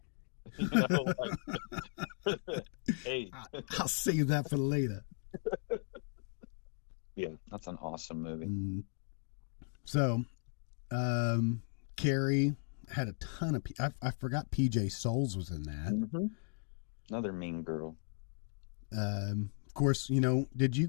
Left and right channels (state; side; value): silent; right; 53 dB below the other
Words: You know, like, hey. I'll save that for later. Yeah, that's an awesome movie. So, Carrie had a ton of. I forgot PJ Souls was in that. Mm-hmm. Another mean girl. Of course, you know. Did you